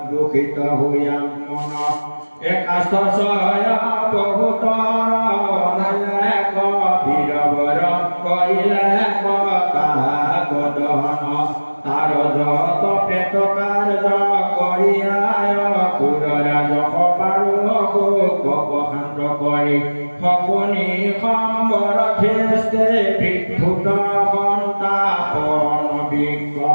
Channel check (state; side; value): inverted; both; correlation -1.00